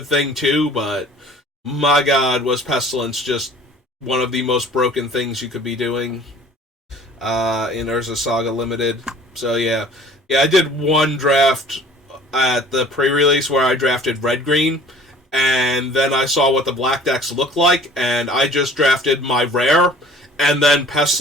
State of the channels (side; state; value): both; normal; correlation 0.48